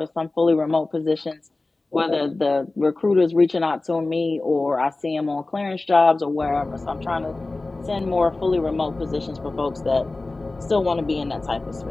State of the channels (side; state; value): right; quieter; 3.2 dB